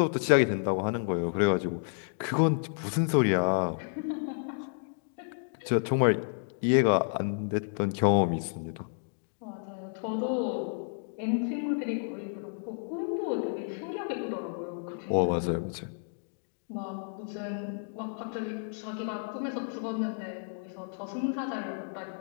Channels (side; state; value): right; silent; digital silence